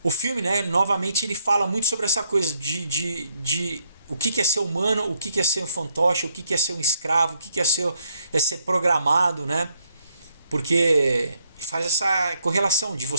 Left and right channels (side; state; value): both; inverted; correlation -0.71